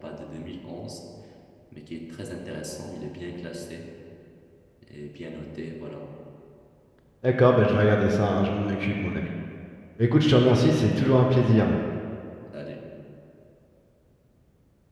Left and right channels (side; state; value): both; identical; correlation 1.00